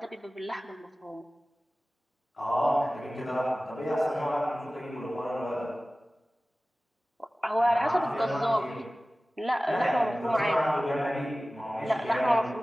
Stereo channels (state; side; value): normal; both; correlation 0.97